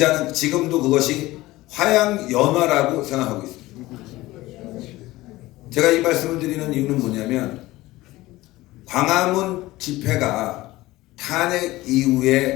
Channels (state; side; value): quieter; right; 18.2 dB